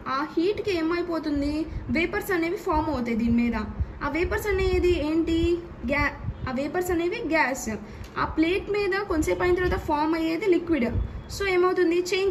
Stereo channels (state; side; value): identical; both; correlation 1.00